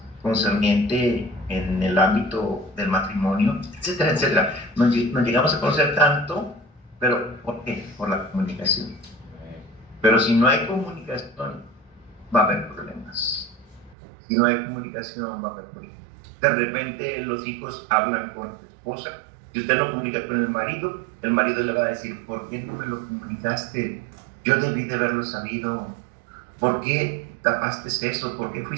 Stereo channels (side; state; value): left; drops out; at 14.0 s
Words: concerniente en el ámbito del matrimonio, etcétera, etcétera. Nos llegamos a conocer tanto, pero ¿por qué? Por la comunicación. Pero si no hay comunicación, va a haber problemas. Si no hay comunicación, va a haber problemas. De repente los hijos hablan con la esposa. Si usted no comunica con el marido le va a decir, ¿por qué no me lo comunicaste? Yo debí de haberlo sabido. ¿Por qué tapaste eso? ¿Por qué